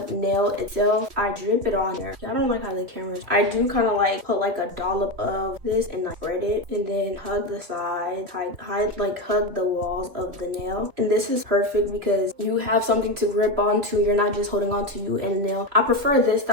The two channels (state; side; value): late; left; 3.3 ms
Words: nail itself, I drip it on there. I don't like how the camera's. I do kind of like put like a dollop of this and like spread it, and then hug the sides, hug the walls of the nail. And this is perfect because you have something to grip onto. You're not just holding onto you and the nail. I prefer this